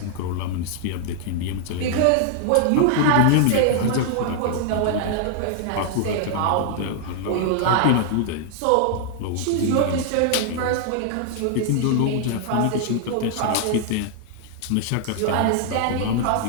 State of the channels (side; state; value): both; different; correlation 0.00